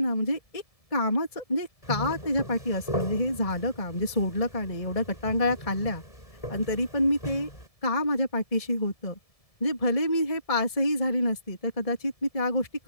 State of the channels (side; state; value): right; late; 1.7 ms